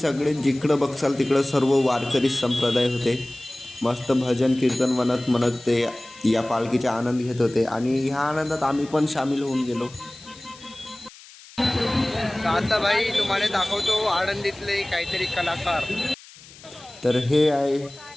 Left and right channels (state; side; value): noise; left; hiss, 21 dB below the sound